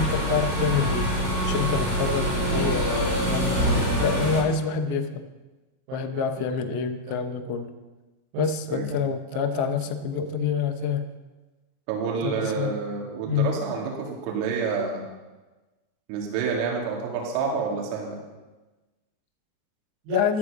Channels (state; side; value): late; left; 38 ms